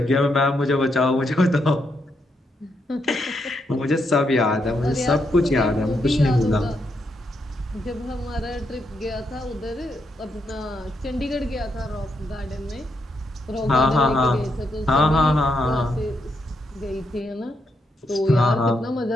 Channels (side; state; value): both; normal; correlation 0.80